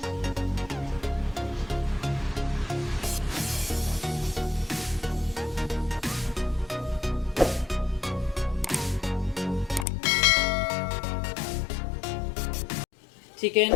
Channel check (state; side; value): drops out; right; at 9.9 s